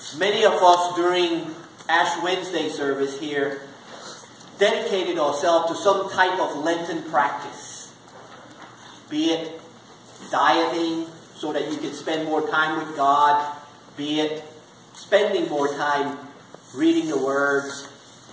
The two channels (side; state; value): both; identical; correlation 1.00